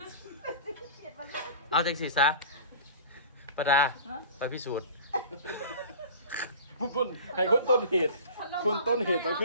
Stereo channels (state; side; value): inverted; both; correlation -0.39